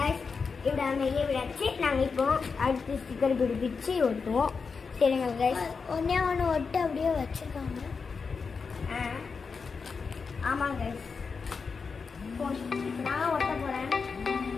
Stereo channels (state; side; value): quieter; right; 5.1 dB